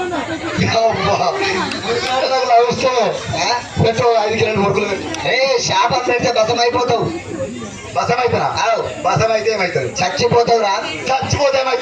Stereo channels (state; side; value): identical; both; correlation 1.00